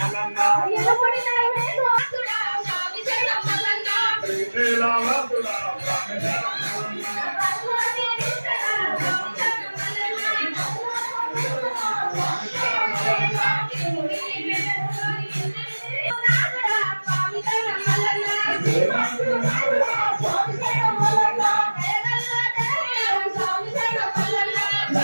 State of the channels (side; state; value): both; inverted; correlation -1.00